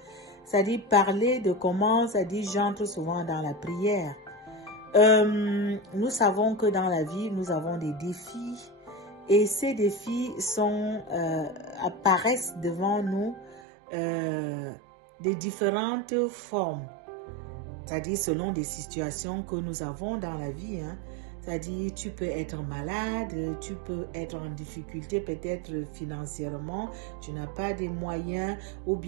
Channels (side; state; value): left; drops out; at 13.6 s